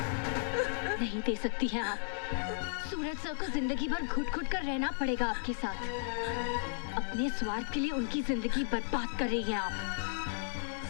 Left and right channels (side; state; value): right; silent; digital silence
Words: नहीं दे सकती हैं आप। सूरज सर को जिंदगी भर घुट-घुट कर रहना पड़ेगा आपके साथ। अपने स्वार्थ के लिए उनकी जिंदगी बर्बाद कर रही हैं आप।